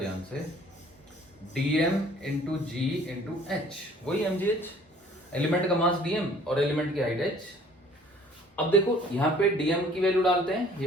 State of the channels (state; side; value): normal; both; correlation 0.54